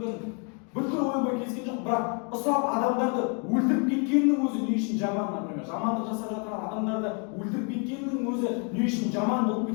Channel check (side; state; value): right; quieter; 37.0 dB